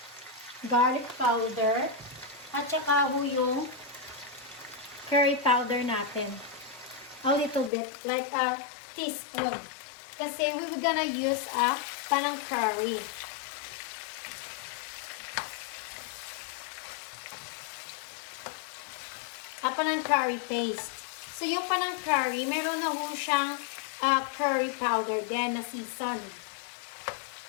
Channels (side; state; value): right; drops out; at 7.7 s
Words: Garlic powder. At saka yung curry powder natin. A little bit. Like a teaspoon. Kasi we were gonna use a Panang Curry. A Panang Curry paste. So, yung Panang Curry, meron na ho siyang curry powder din na season.